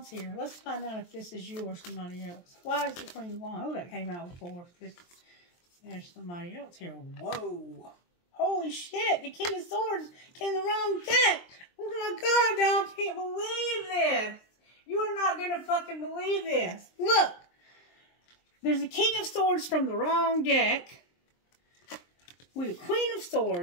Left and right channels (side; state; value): right; late; 23 ms